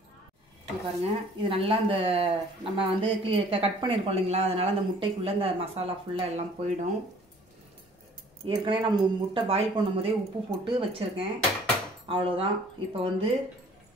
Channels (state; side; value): normal; both; correlation 0.54